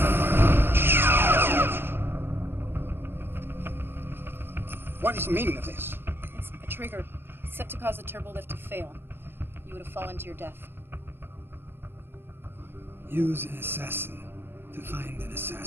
What is the meaning of this? It's a trigger set to cause the turbolift to fail. You would have fallen to your death. Use an assassin to find an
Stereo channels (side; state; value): left; late; 0.11 ms